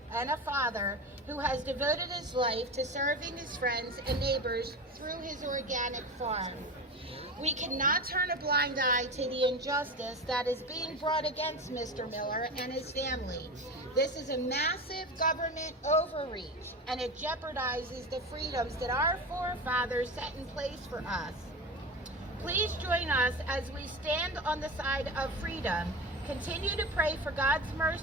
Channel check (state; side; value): normal; both; correlation 0.26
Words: and a father who has devoted his life to serving his friends and neighbors through his organic farm. We cannot turn a blind eye to the injustice that is being brought against Mr. Miller and his family. This is a massive government overreach, and it jeopardizes the freedoms that our forefathers set in place for us. Please join us as we stand on the side of freedom. Continue to pray for God's